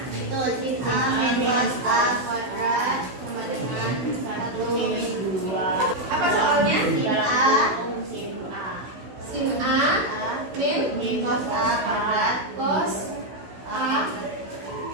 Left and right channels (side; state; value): left; late; 16 ms